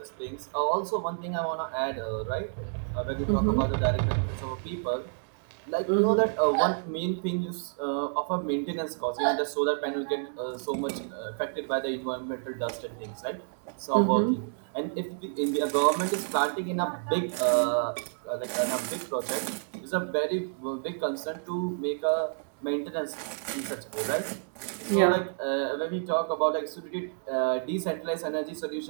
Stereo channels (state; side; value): silent; left; digital silence